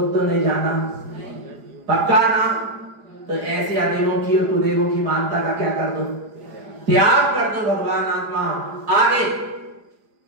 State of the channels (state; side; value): late; left; 4.9 ms